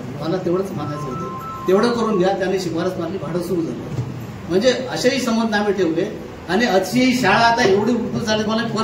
मला तेवढंच मानायचं होतं, तेवढं करून घ्या. त्यांनी शिफारस मारली, भाडं सुरू झालं. म्हणजे असेही संबंध आम्ही ठेवले. आणि अशी शाळा आता एवढी उठून झाली. मला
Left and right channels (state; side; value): identical; both; correlation 1.00